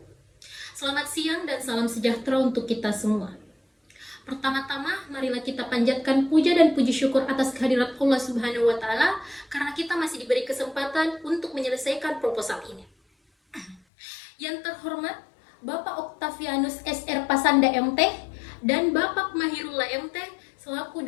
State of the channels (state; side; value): drops out; right; at 13.8 s